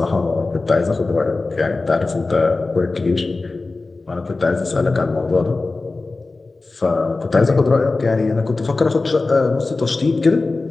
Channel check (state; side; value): quieter; right; 3.5 dB